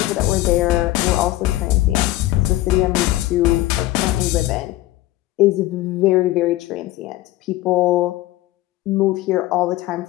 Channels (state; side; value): quieter; right; 16.6 dB